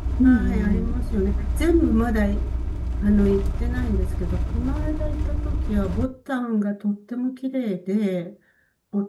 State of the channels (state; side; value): identical; both; correlation 1.00